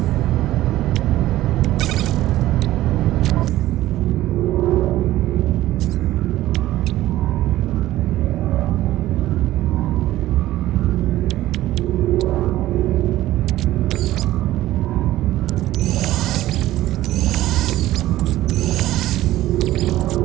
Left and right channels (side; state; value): left; quieter; 15.2 dB